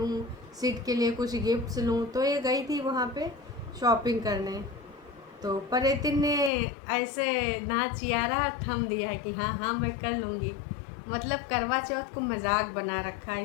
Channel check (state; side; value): drops out; right; at 6.5 s